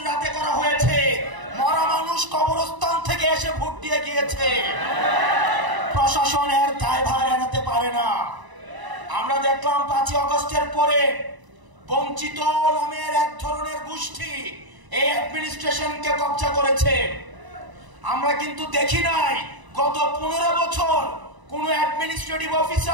রাতে করা হয়েছে, মরা মানুষ কবরস্থান থেকে এসে ভোট দিয়ে গিয়েছে। প্রশাসনের দায়ভার এড়াতে পারে না। আমরা দেখলাম 5 আগস্টের পরে বঞ্চিত নামের এক ধরনের গোষ্ঠী এই অ্যাডমিনিস্ট্রেশনকে কবজা করেছে। আমরা কিন্তু দেখি নাই গত 15 বছর কোন অ্যাডমিনিস্ট্রেটিভ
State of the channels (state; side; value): late; left; 1.0 ms